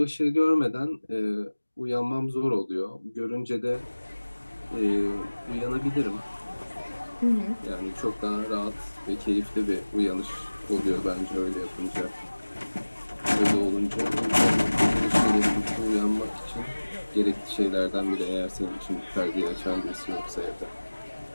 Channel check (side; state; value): both; inverted; correlation -1.00